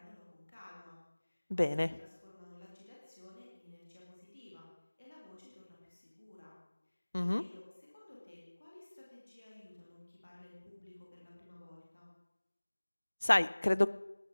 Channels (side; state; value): both; inverted; correlation -1.00